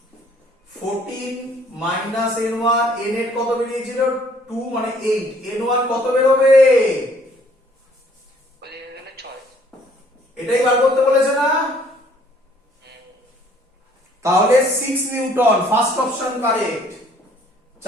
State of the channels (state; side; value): normal; both; correlation 0.60